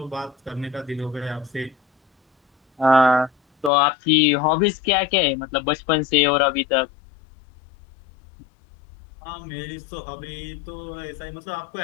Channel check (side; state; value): right; drops out; at 3.7 s